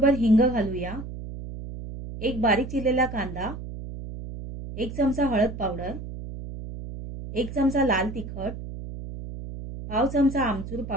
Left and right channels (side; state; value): right; noise; hum, 10 dB below the sound